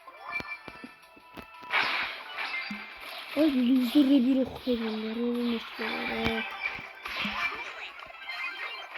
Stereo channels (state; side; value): identical; both; correlation 1.00